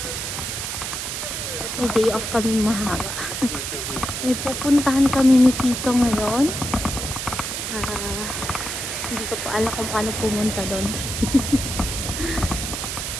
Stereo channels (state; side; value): noise; right; hiss, 4 dB below the sound